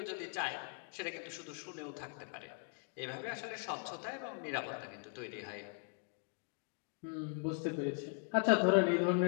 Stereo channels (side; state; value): right; quieter; 39.9 dB